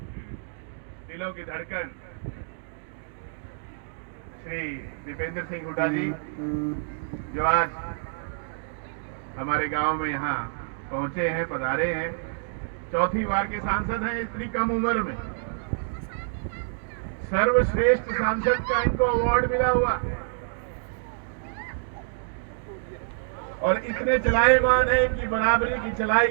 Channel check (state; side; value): silent; left; digital silence